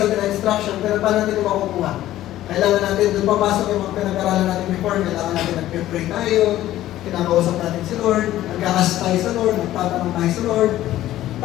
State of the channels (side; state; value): right; quieter; 14.1 dB